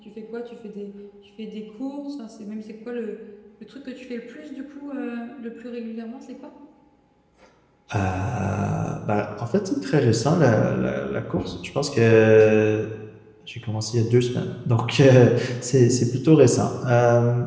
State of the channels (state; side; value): identical; both; correlation 1.00